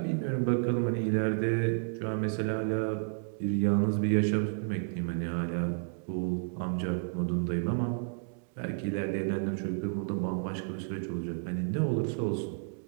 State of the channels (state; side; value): silent; left; digital silence